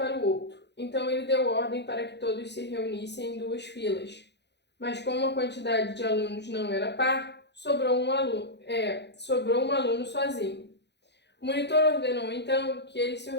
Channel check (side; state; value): right; late; 0.50 ms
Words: o outro. Então, ele deu ordem para que todos se reunissem em 2 filas. Mas como a quantidade de alunos não era par, sobrou um aluno sozinho. O monitor ordenou, então, que eles se